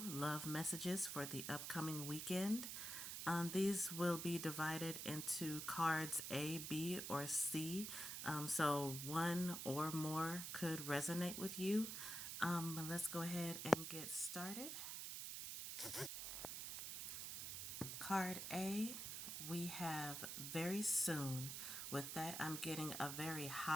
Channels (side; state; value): right; noise; hiss, 5 dB below the sound